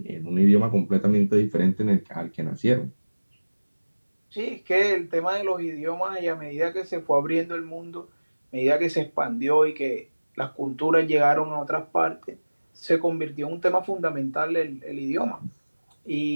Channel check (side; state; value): both; inverted; correlation -1.00